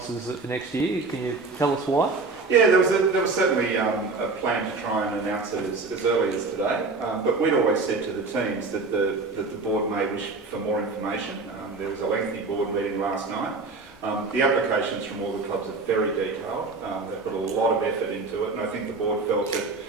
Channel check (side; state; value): left; quieter; 3.8 dB